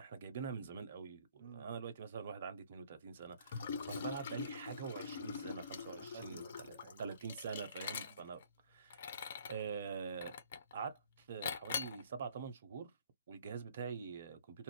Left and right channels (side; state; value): both; inverted; correlation -0.58